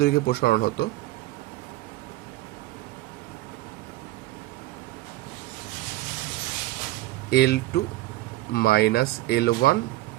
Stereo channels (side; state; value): left; quieter; 17.6 dB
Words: প্রসারণ হতো L2 minus L1